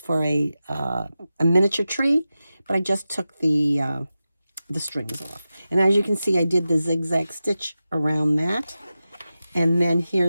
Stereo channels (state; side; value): inverted; both; correlation -0.93